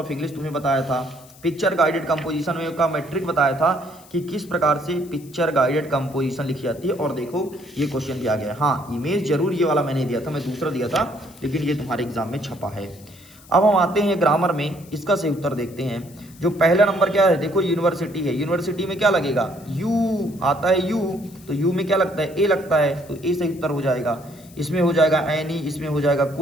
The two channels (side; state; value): left; noise; hiss, 24 dB below the sound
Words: इंग्लिश तुम्हें बताया था, पिक्चर गाइडेड कंपोजिशन में का मैट्रिक बताया था कि किस प्रकार से पिक्चर गाइडेड कंपोजिशन लिखी जाती है। और देखो ये क्वेश्चन भी आ गया। हाँ, इमेज जरूर ये वाला मैंने दिया था, मैं दूसरा दिया था, लेकिन ये तुम्हारे एग्जाम में छपा है। अब हम आते हैं ग्रामर में, इसका सही उत्तर देखते हैं। जो पहला नंबर क्या है, देखो यूनिवर्सिटी है, यूनिवर्सिटी में क्या लगेगा, यू आता है, यू तो यू में क्या लगता है, ए लगता है, तो ए सही उत्तर हो जाएगा। इसमें हो जाएगा एनी, इसमें हो जाएगा